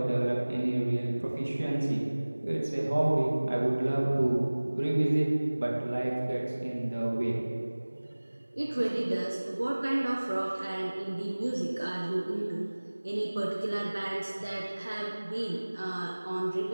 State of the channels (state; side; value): inverted; both; correlation -1.00